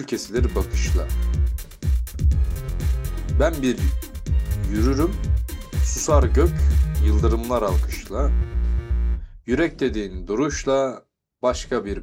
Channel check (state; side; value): identical; both; correlation 1.00